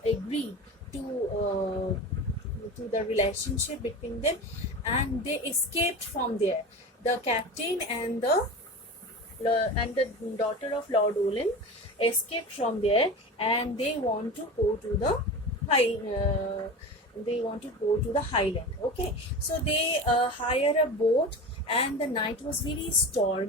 agreed to the relationship between them, and they escaped from there. The captain and the daughter of Lord Ullyn escaped from there, and they want to go to the highland. Okay, so they hire a boat, and the night was very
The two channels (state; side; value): normal; both; correlation 0.30